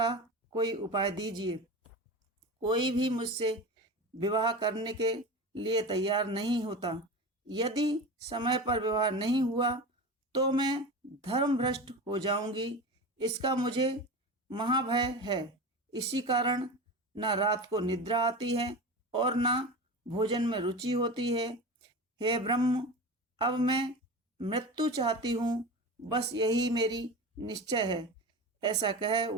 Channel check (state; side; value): normal; both; correlation 0.28